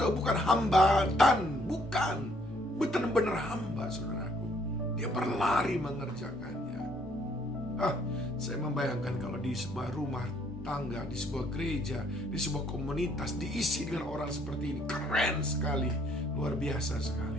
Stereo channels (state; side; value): normal; both; correlation 0.66